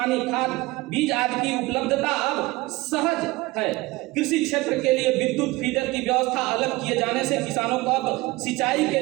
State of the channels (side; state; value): left; quieter; 20.9 dB